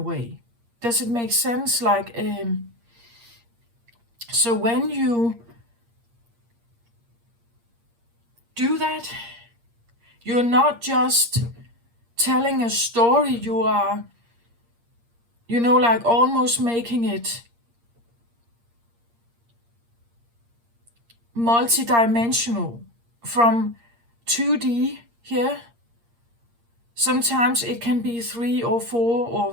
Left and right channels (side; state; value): left; late; 8.6 ms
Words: way. Does it make sense? Like, so when you do that, you're not just telling a story, you are, you know, like almost making it multi-dimensional from 2D here. Sometimes it can be 3 or 4 or